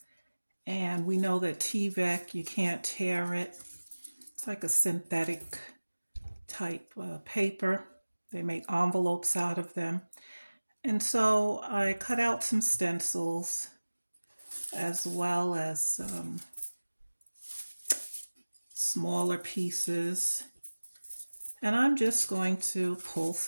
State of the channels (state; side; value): inverted; both; correlation -1.00